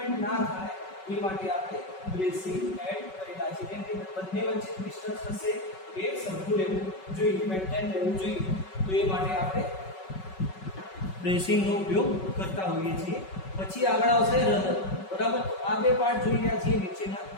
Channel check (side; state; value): right; late; 5.3 ms